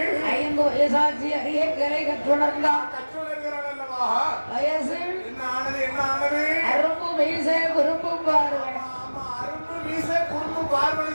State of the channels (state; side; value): inverted; both; correlation -1.00